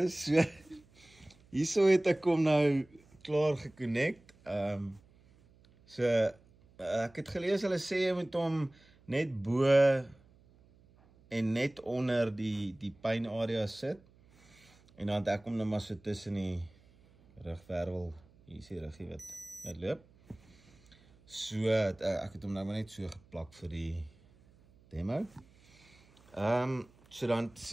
so hierso het ek hom nou klaar geconnect. Ek het gelees hulle sê jy moet hom net bo en net onder die pynarea sit. En dan het ek hom nou maar so tussen die rugwervel, hier is die ruggie wat loop. So, ek het hom nou maar net so geplak vir die demo. So dan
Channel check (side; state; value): right; noise; hum, 28 dB below the sound